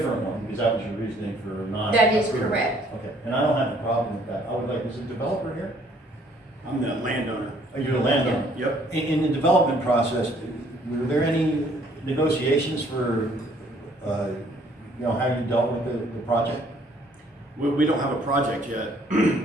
one, because that was your reasoning for not. That is approving. correct. Okay, and I don't have a problem with that. I would like, is the developer here? I'm the landowner. Are you the landowner? Yep. In the development process, were there any negotiations for, how you dealt with the project? We don't have a project yet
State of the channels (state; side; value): normal; both; correlation 0.62